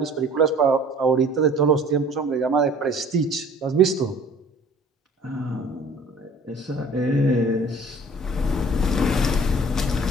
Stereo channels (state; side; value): normal; both; correlation 0.49